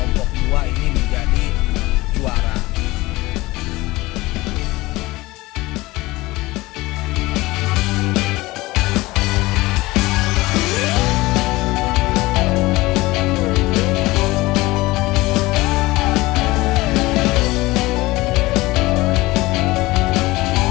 2 ini menjadi juara.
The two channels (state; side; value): quieter; right; 20.2 dB